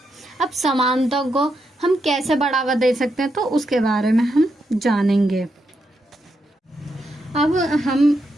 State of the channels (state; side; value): normal; both; correlation 0.82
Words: अब समानता को हम कैसे बढ़ावा दे सकते हैं तो उसके बारे में हम जानेंगे। अब